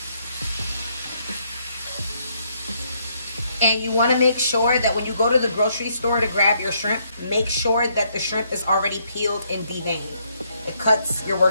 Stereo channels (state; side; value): inverted; both; correlation -0.72